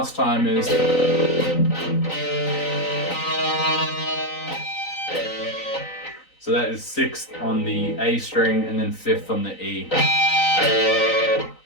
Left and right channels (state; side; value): late; right; 3.9 ms